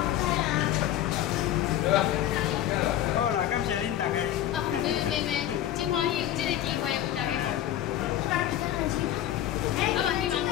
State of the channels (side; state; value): right; quieter; 12.1 dB